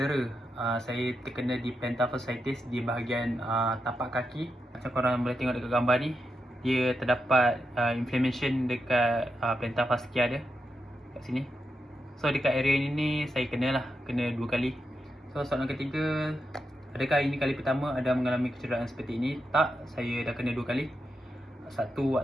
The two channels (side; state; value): both; normal; correlation 0.86